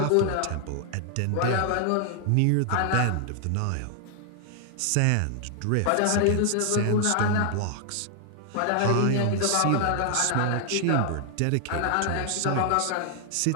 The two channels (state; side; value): different; both; correlation 0.00